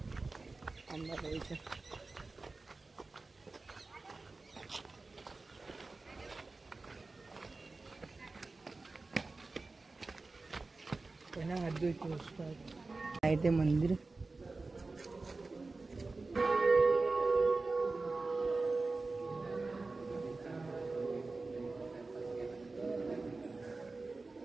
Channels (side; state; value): left; quieter; 3.6 dB